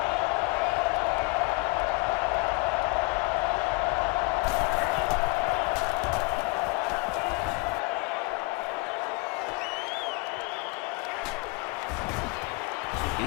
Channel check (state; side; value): quieter; right; 27.4 dB